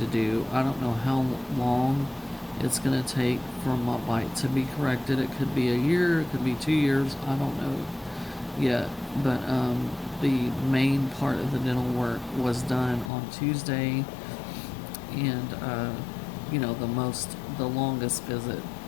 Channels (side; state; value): right; drops out; at 13.1 s